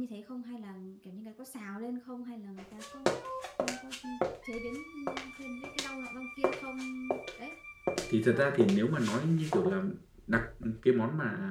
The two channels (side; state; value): both; identical; correlation 1.00